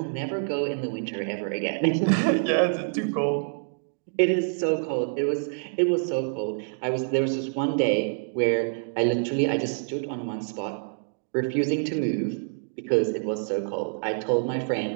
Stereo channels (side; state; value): left; silent; digital silence